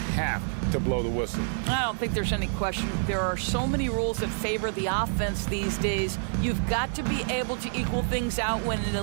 to blow the whistle. I don't think there's any question. There are so many rules that favor the offense these days. You've got to be able to equal things out when an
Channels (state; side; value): silent; left; 60 dB below the other